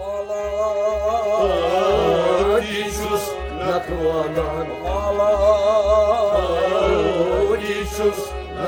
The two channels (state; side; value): identical; both; correlation 1.00